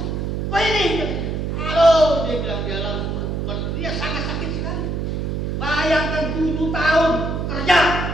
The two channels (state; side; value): noise; right; hum, 2 dB below the sound